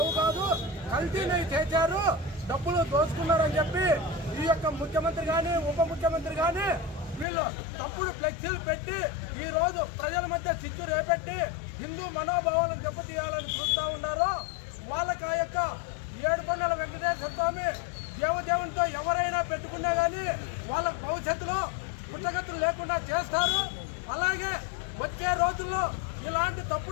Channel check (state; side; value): drops out; right; at 7.2 s